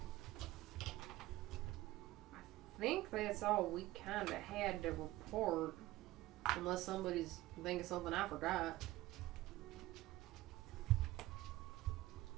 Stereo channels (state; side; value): quieter; left; 17.3 dB